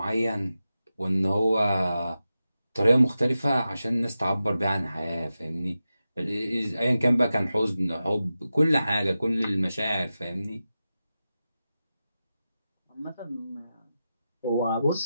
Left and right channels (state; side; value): inverted; both; correlation -0.92